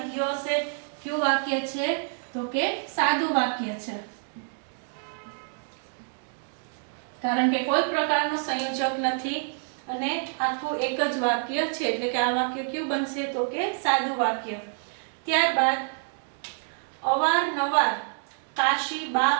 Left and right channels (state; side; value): silent; left; 56 dB below the other